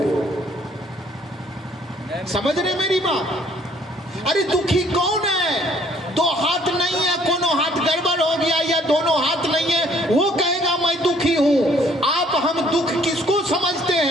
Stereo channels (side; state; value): both; normal; correlation 0.61